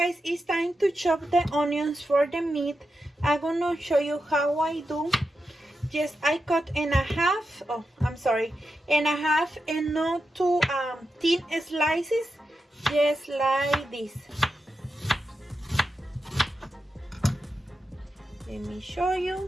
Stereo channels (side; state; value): both; normal; correlation 0.89